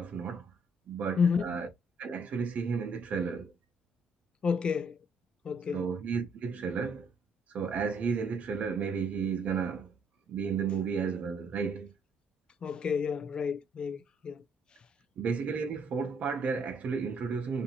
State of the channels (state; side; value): normal; both; correlation 0.67